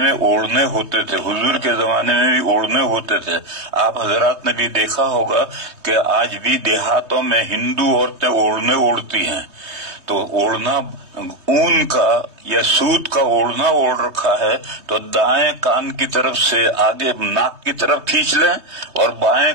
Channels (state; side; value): late; left; 3.2 ms